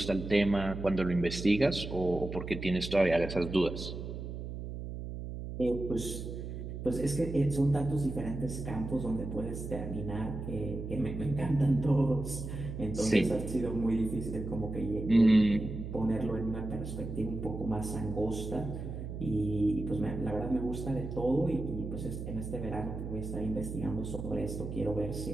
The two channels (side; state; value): right; noise; hum, 7 dB below the sound